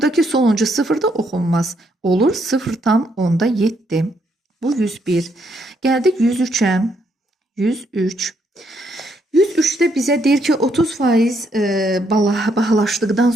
sonuncu 0 da oxunmaz. Olur 0,7. Bu 101. Gəldik 103-ə. 103. 103-də bizə deyir ki, 30% bahalaşdıqdan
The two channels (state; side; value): normal; both; correlation 0.74